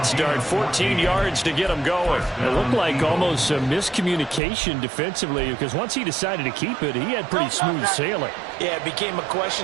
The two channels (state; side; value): drops out; left; at 4.4 s